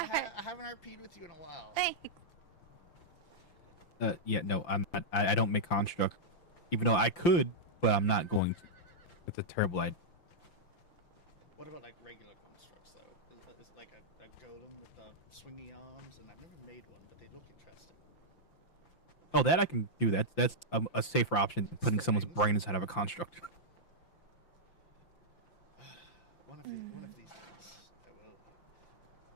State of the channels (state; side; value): late; right; 5.9 ms